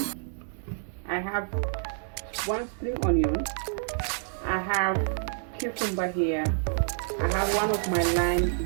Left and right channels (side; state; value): left; silent; 59 dB below the other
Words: I have 1 spring onion. I have cucumber here. I have 1 of my lime